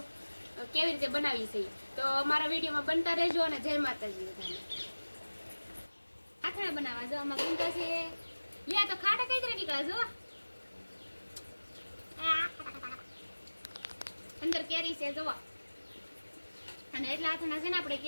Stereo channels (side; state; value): both; inverted; correlation -1.00